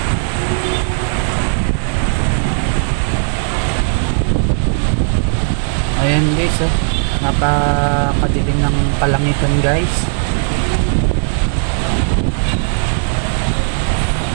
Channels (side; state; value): left; silent; digital silence